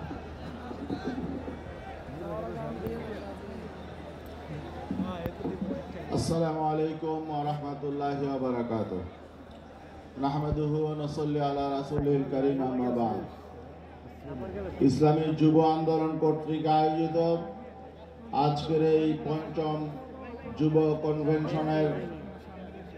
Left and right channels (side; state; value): both; identical; correlation 1.00